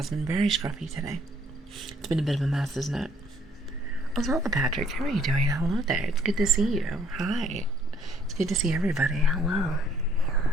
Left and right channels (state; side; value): normal; both; correlation 0.63